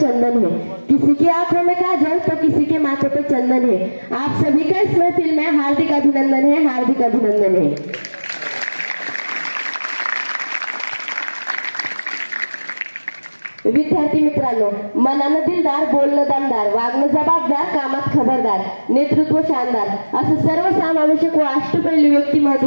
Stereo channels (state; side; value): inverted; both; correlation -1.00